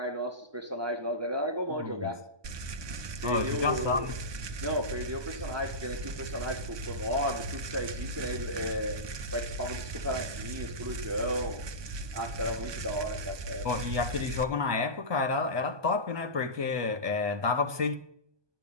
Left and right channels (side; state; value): left; late; 1.2 ms